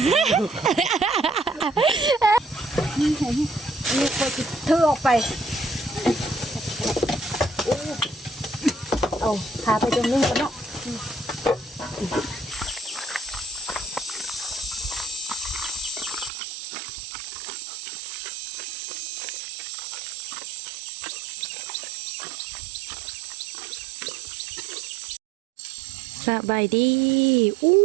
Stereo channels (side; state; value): left; drops out; at 16.3 s